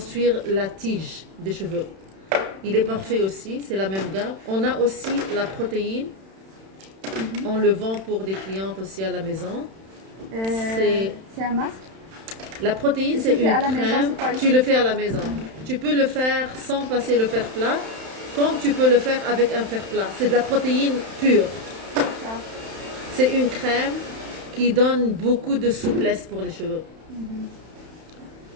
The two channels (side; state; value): left; late; 31 ms